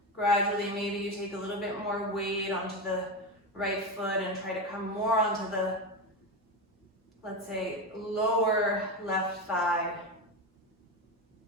gradually maybe you take a little bit more weight onto the right foot and try to come more onto the, let's say, lower left thigh.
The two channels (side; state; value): both; normal; correlation 0.17